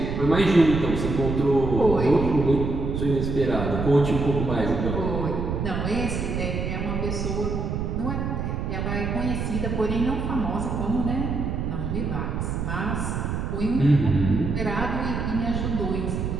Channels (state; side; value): noise; right; rumble, 2 dB below the sound